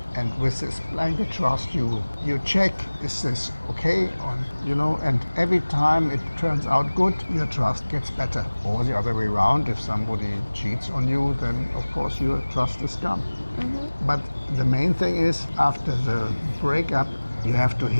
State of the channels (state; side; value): inverted; both; correlation -1.00